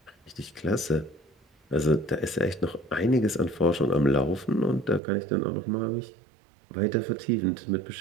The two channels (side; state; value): left; drops out; at 5.0 s